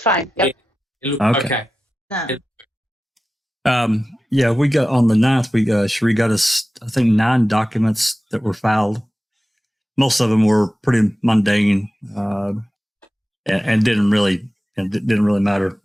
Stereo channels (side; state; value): both; normal; correlation 0.94